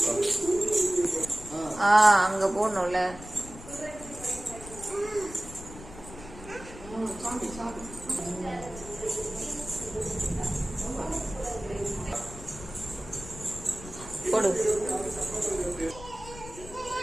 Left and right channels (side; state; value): left; noise; rumble, 15 dB below the sound